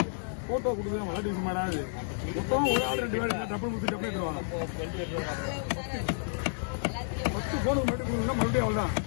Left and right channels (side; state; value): right; silent; 57 dB below the other